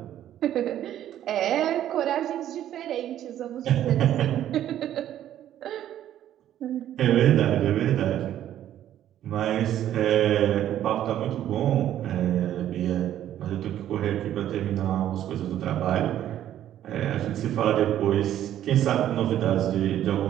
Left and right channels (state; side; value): quieter; left; 11.6 dB